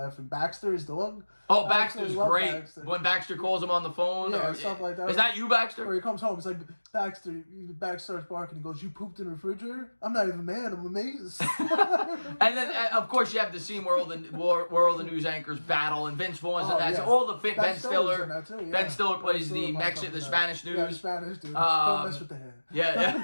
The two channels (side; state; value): both; inverted; correlation -1.00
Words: And Baxter, his dog. Oh, Baxter's great. Baxter. When Baxter calls him on the phone. Yeah, stuff like that. Is that you, Baxter? Or he comes home, it's like, Baxter starts barking and goes, "You pooped in the refrigerator? I'm not even mad, I'm amazed." And then, of course, you have the scene where all the news anchors battle, and Vince Vaughn's in that. Yeah. So all the Ben Stiller. Ben Stiller plays the Spanish news. Yeah, Spanish dude. Don't mess with the head.